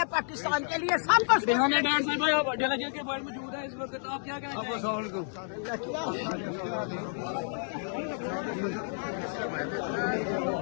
पाकिस्तान के लिए। सब कुछ अडियाला जेल के बारे में मौजूद है इस वक्त, आप क्या कहना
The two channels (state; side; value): silent; right; 57 dB below the other